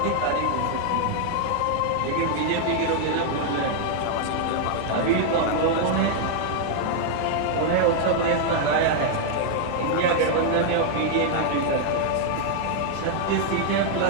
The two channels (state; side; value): different; both; correlation 0.00